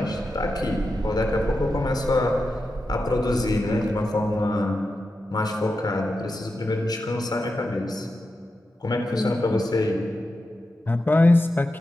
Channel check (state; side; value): normal; both; correlation 0.89